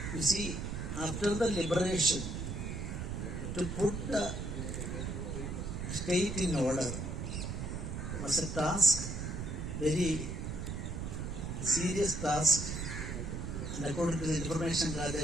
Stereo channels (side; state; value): right; noise; rumble, 4 dB below the sound